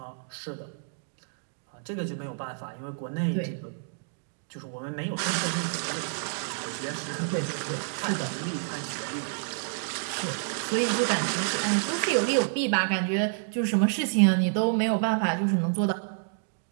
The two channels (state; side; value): silent; left; digital silence